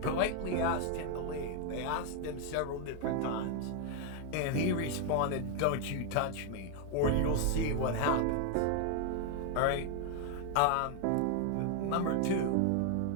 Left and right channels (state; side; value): different; both; correlation 0.01